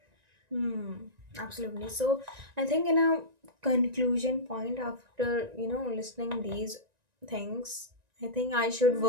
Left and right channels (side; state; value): left; late; 1.9 ms